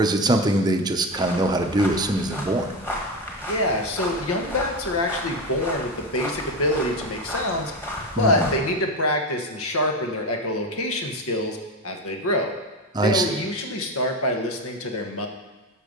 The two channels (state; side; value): normal; both; correlation 0.19